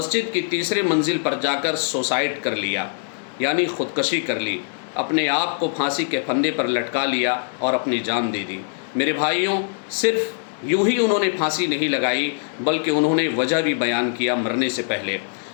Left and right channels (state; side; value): silent; right; digital silence